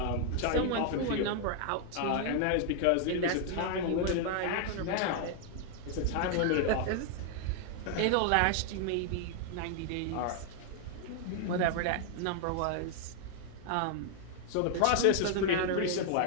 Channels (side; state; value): both; different; correlation 0.00